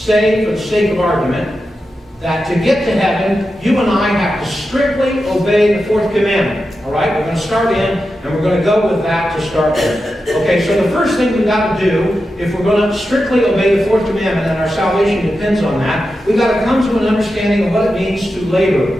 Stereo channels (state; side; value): normal; both; correlation 0.90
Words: for the sake of argument, that to get to heaven, you and I have to strictly obey the fourth commandment. All right? We're going to start in, and we're going to go with that to start with. Okay, so the first thing we've got to do, if we're going to strictly obey the fourth commandment, and our salvation depends on that, we've got to come to an understanding of what it means to